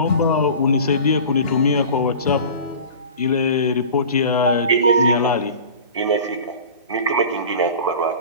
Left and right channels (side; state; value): both; inverted; correlation -0.38